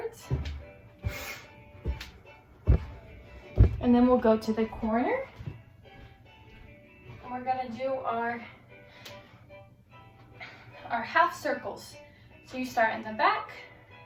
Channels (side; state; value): both; identical; correlation 1.00